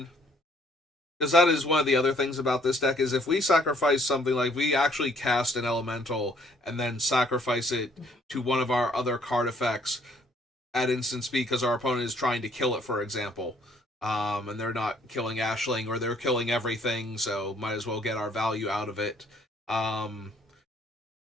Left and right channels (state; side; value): normal; both; correlation 0.63